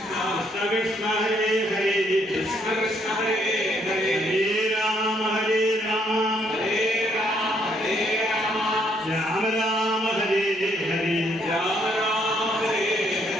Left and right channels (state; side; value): normal; both; correlation 0.70